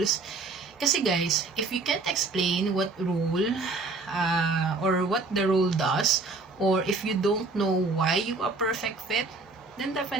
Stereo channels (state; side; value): quieter; left; 3.7 dB